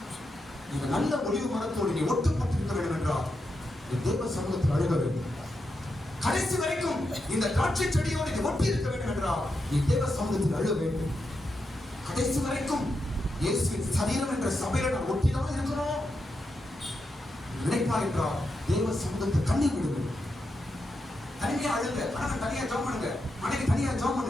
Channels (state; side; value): normal; both; correlation 0.86